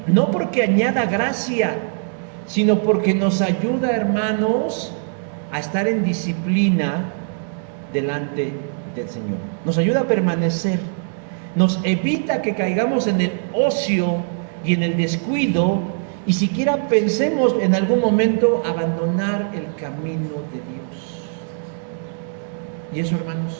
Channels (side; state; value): left; silent; digital silence